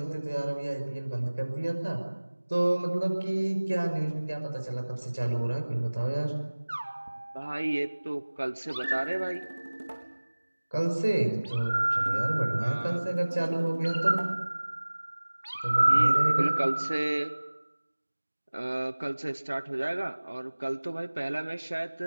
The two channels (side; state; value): both; inverted; correlation -1.00